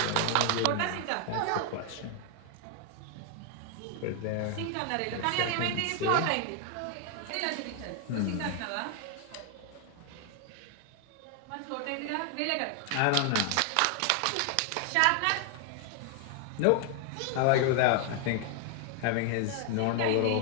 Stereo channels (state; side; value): different; both; correlation 0.00